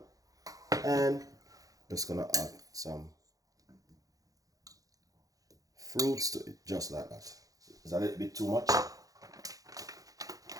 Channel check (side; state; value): left; late; 0.17 ms